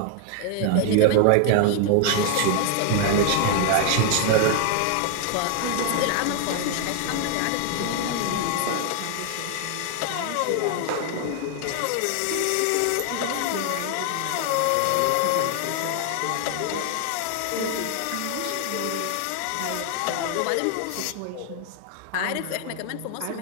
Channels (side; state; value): both; different; correlation 0.00